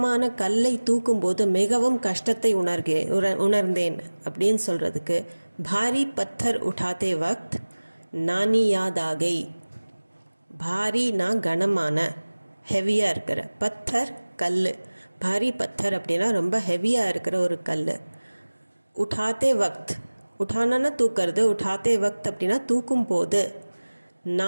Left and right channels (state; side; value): inverted; both; correlation -1.00